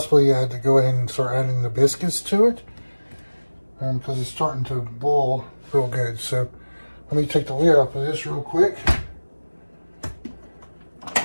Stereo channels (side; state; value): both; inverted; correlation -1.00